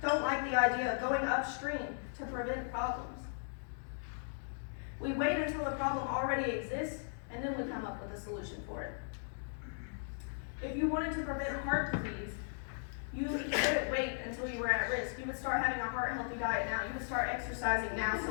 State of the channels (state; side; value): silent; right; digital silence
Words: don't like the idea of going upstream to prevent problems. We wait until the problem already exists, and then we come up with a solution for it. If you wanted to prevent heart disease, you wouldn't wait until you were at risk. You would start having a heart-healthy diet now. You would start exercising now, so